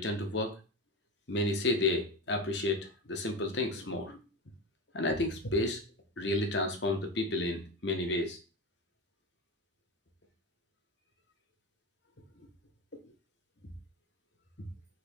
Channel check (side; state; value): both; normal; correlation 0.22